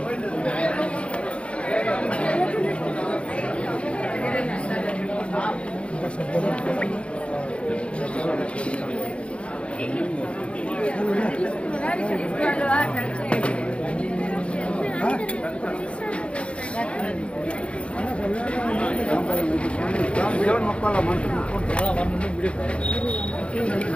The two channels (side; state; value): right; late; 0.059 ms